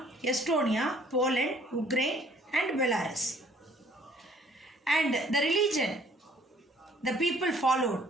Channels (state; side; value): normal; both; correlation 0.59